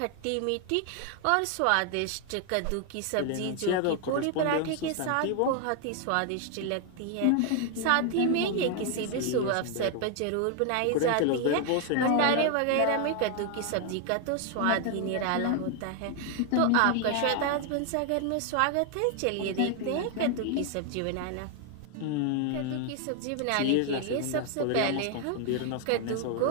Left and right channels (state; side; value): different; both; correlation 0.00